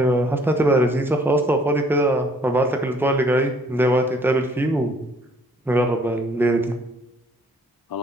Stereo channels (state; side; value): normal; both; correlation 0.61